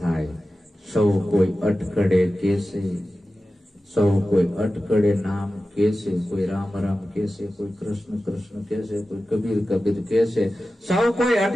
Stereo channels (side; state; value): both; normal; correlation 0.94